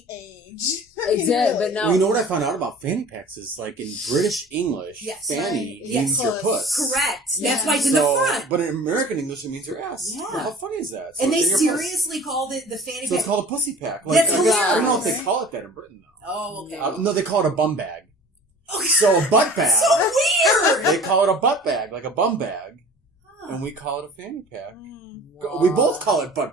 age. Exactly, but now... Well, you know what I found out about fanny packs is, like, in British English, fanny means your puss. Correct. That's why it's in the front. But in American English, it means your ass. Yeah. Well, how funny is that? So and they seriously called it the fanny pack. So it's called a pussy pack. Like, That's hilarious. I don't know if they call it that in Britain, though. Oh, okay. No, they call it a bum bag. Okay. So a butt bag. So weird! They call it a butt bag, like a bum bag. And we call it a fanny pack. Wow. We both call it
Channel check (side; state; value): both; normal; correlation 0.44